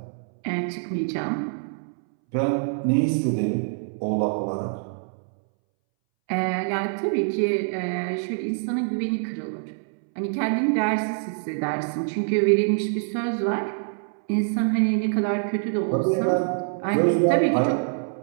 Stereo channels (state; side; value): silent; left; 62 dB below the other